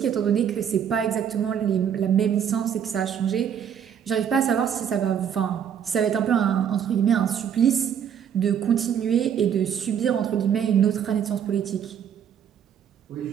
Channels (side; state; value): left; quieter; 8.5 dB